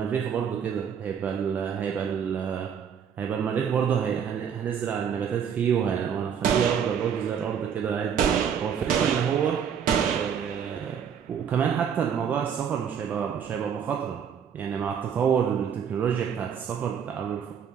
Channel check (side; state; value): left; quieter; 7.7 dB